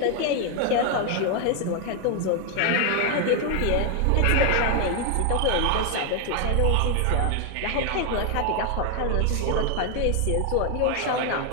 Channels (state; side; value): different; both; correlation 0.00